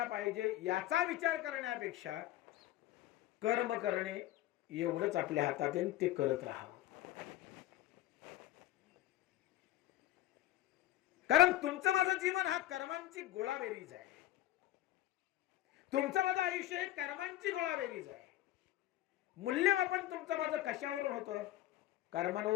पाहिजे याचा विचार करण्यापेक्षा कर्म करणे एवढंच आपल्या हातात आहे, ते करत राहावं. कारण तुमचं माझं जीवन हा कर्मांची गोळाबेरीज आहे. तुमचं माझं आयुष्य हे कर्मांची गोळाबेरीज आहे. मूल्यमापन तुमचं माझं कशावरून होतं?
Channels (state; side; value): quieter; right; 14.1 dB